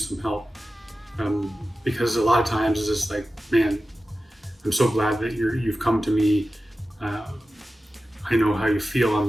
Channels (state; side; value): normal; both; correlation 0.94